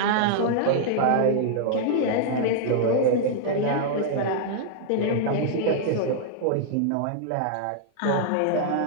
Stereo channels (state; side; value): different; both; correlation -0.01